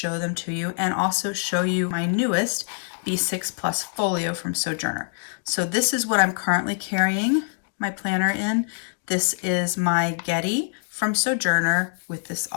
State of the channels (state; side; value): silent; right; digital silence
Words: them to you, and also show you my newest B6 Plus folio from Sojourner. So this is what I'm currently carrying my planner in. This is my Getty from Sojourner with this